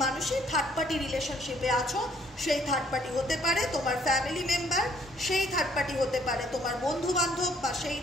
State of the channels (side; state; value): both; normal; correlation 0.64